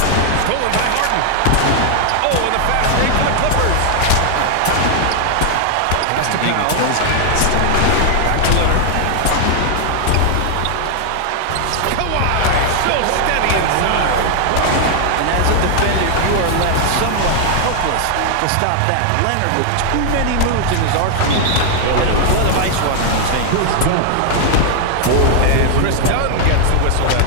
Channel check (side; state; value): both; different; correlation 0.00